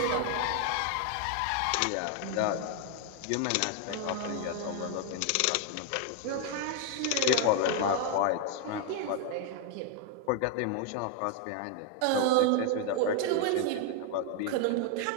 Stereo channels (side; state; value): both; different; correlation 0.00